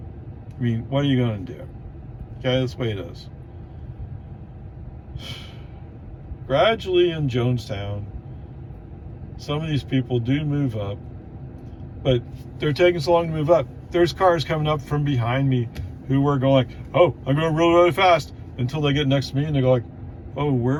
I mean, what are you going to do? Okay, that's the way it is. Gradually in Jonestown, some of these people do move up, but they're taking so long to move up. There's cars coming up from behind me who were going like, oh, I'm going really, really fast, until they get next to me and they go like, oh,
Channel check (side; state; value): both; identical; correlation 1.00